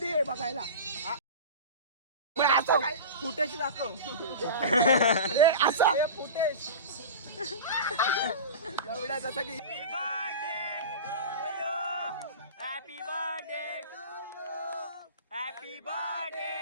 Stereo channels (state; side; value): inverted; both; correlation -0.30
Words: आहे बघायला फुटेज दाखव असा लावड्या जसं की happy birthday to you happy